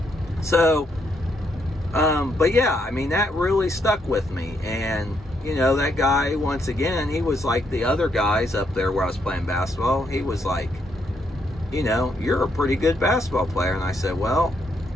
So, but yeah, I mean, that really stuck with me. And, you know, that guy, once again, he was like the other guys up there where I was playing basketball. He was like, you know, you're a pretty good basketball player. And I said, well,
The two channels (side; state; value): both; normal; correlation 0.76